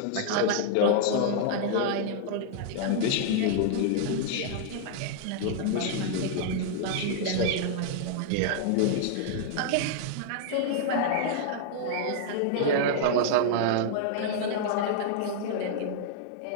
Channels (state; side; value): different; both; correlation -0.01